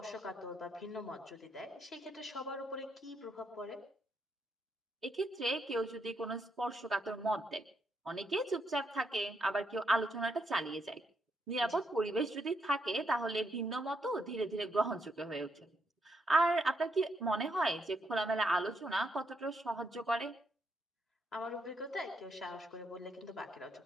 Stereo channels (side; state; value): both; normal; correlation 0.77